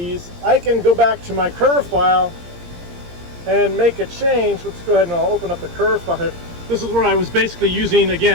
I can go back to my curve file and make a change. Let's go ahead and I'll open up the curve file. This is where I was basically using,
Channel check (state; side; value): late; left; 17 ms